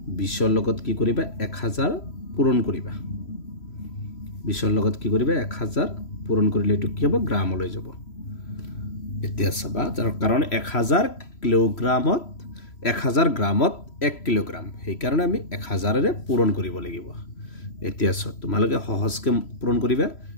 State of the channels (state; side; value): late; right; 3.0 ms